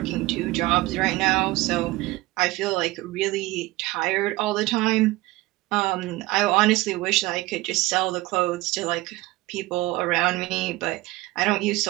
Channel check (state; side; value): quieter; left; 19.7 dB